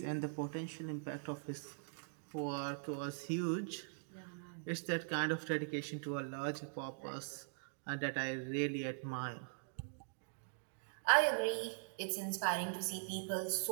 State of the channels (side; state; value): left; silent; digital silence